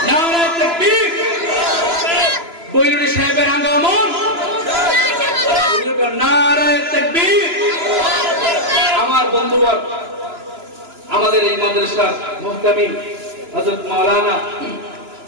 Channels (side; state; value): left; late; 2.9 ms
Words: নারে তাকবীর। বৈরুরি সাহেবের আগমন। নারে তাকবীর। আমার বড়ুয়ার আমাদের এই মাদ্রাসার মুহতামিম হযরত মাওলানা